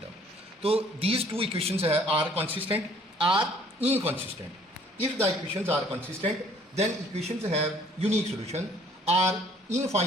term. तो these two equations are consistent, are inconsistent. If the equations are consistent, then equations have unique solution, are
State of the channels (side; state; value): both; normal; correlation 0.58